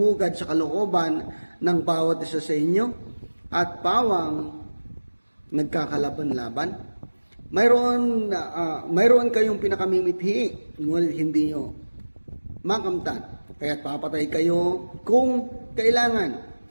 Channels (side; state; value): both; inverted; correlation -1.00